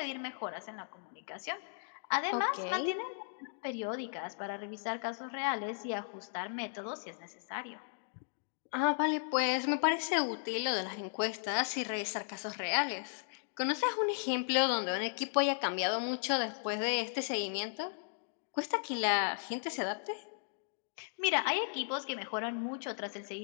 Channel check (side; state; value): right; silent; digital silence